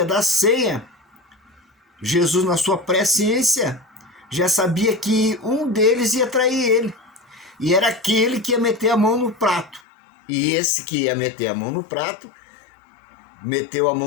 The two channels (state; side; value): drops out; right; at 9.8 s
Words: da ceia, Jesus, na sua presciência, já sabia que um deles ia trair ele. E era aquele que ia meter a mão no prato. E esse que ia meter a mão no prato, meteu a